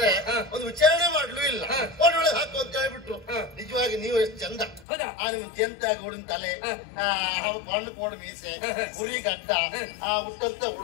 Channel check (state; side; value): drops out; right; at 4.9 s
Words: ಒಂದು ವಿಚಾರಣೆ ಮಾಡ್ಲು ಇಲ್ಲ. ಕೋಣೆಯೊಳಗೆ ಹಾಕು ಅಂತ ಹೇಳ್ಬಿಟ್ರು. ನಿಜವಾಗಿ ನೀವು ಎಷ್ಟು ಚಂದ. ನಿಮ್ಗೆ ಜಂತಾಗಿ ಉಳಿದ ತಲೆ, ಬಣ್ಣ ಕೋಣ ಮೀಸೆ, ಉರಿ ಗಡ್ಡ, ಉಟ್ಟಂತ